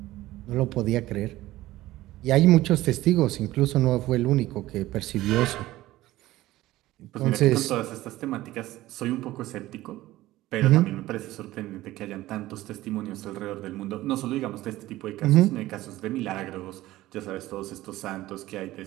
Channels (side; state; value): left; quieter; 16.5 dB